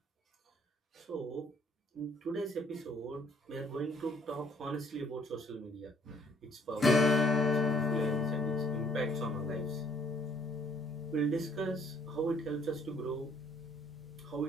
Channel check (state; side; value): normal; both; correlation 0.62